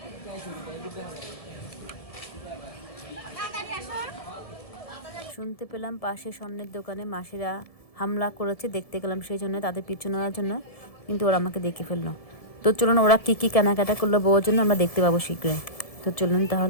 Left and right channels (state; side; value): late; right; 1.7 ms